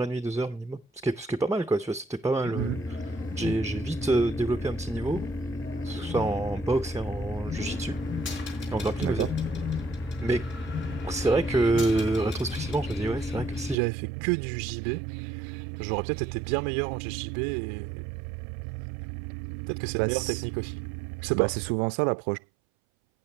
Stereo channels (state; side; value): drops out; left; at 13.8 s